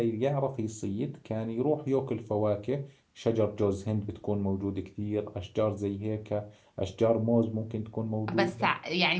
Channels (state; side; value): identical; both; correlation 1.00